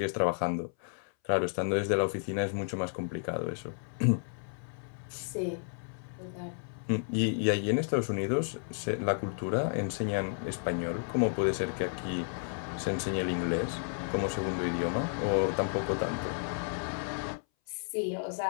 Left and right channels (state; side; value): silent; right; 56 dB below the other